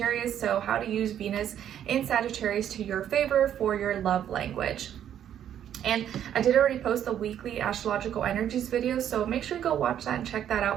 so how to use Venus in Sagittarius to your favor for your love language. And I did already post the weekly astrological energies video, so make sure you go watch that and check that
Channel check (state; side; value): quieter; left; 10.1 dB